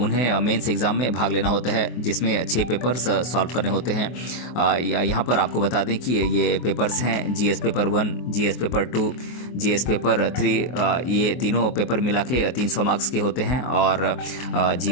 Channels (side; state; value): right; late; 24 ms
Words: मेंस एग्ज़ाम में भाग लेना होता है, जिसमें 6 पेपर्स सॉल्व करने होते हैं। यहाँ पर आपको बता दें कि ये पेपर्स हैं GS paper 1, GS paper 2, GS paper 3। ये तीनों पेपर मिला के 300 मार्क्स के होते हैं, और